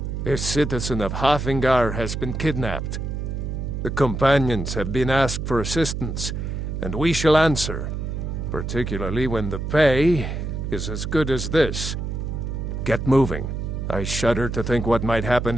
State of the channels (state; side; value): noise; right; hum, 4 dB below the sound